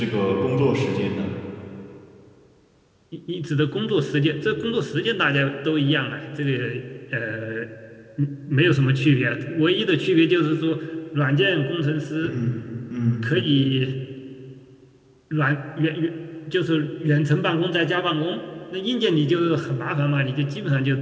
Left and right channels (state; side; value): identical; both; correlation 1.00